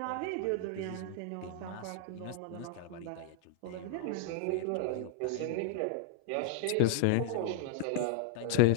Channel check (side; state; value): both; different; correlation 0.00